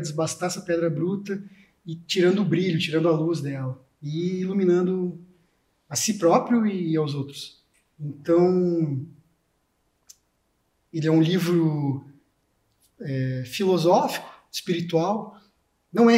essa pedra bruta e tirando o brilho, tirando a luz dela e iluminando a si próprio e aos outros. Então, ele é um livro filosófico, espiritual, não é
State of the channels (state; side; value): identical; both; correlation 1.00